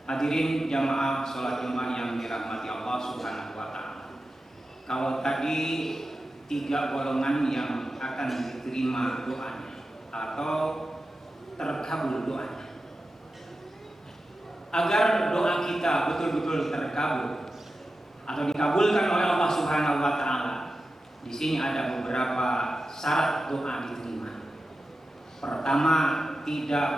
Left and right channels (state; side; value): normal; both; correlation 0.92